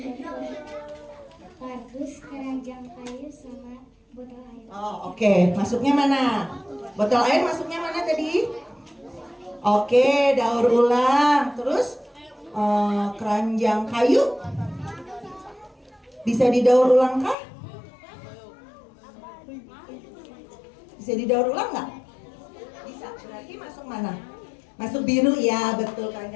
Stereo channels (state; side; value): drops out; right; at 17.4 s